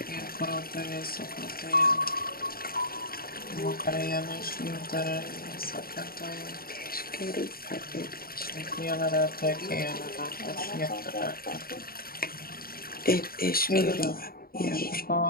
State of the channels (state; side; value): late; right; 0.43 ms